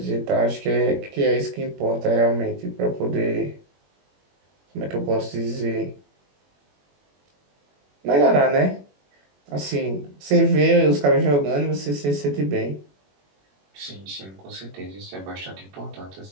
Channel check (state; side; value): late; left; 21 ms